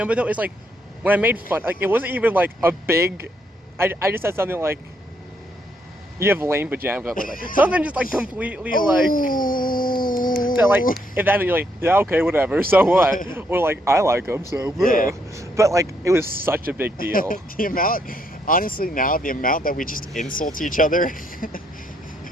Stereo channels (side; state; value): both; normal; correlation 0.74